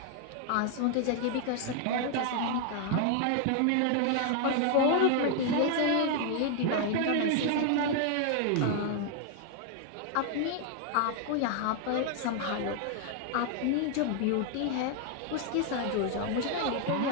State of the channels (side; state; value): both; different; correlation 0.00